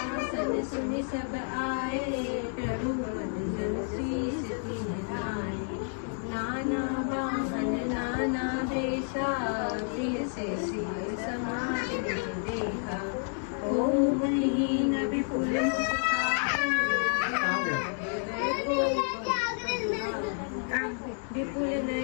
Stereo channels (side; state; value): right; silent; 58 dB below the other